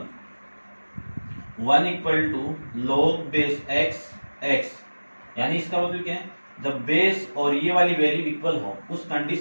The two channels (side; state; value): both; inverted; correlation -1.00